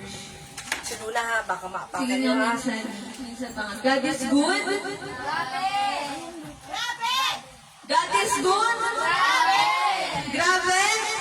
Sinula ha, baka Sige maapakan nga, nyo ha. minsan pa nga. God is good. God is good. Grabe.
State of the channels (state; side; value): identical; both; correlation 1.00